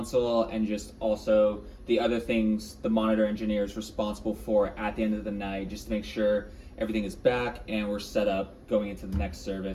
and just also the other things the monitor engineer is responsible for at the end of the night, just to make sure everything is back and we're set up going into the next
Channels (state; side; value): identical; both; correlation 1.00